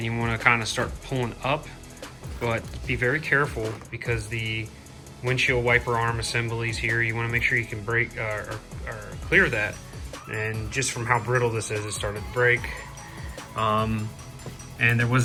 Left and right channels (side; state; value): both; identical; correlation 1.00